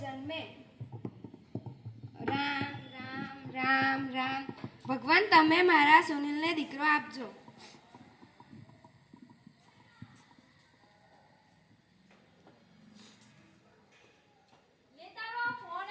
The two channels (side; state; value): both; identical; correlation 1.00